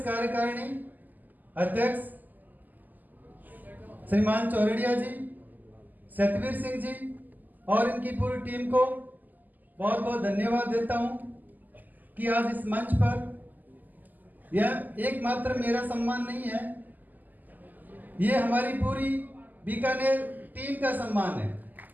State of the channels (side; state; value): left; late; 0.084 ms